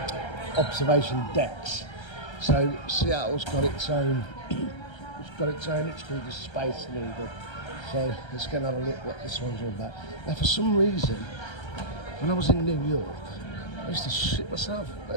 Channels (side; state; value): right; late; 1.3 ms